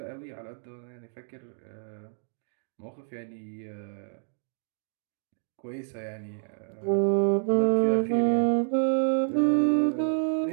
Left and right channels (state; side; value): silent; left; digital silence